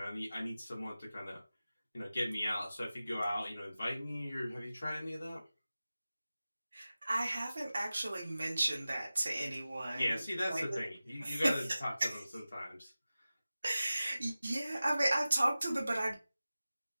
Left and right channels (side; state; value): both; inverted; correlation -0.96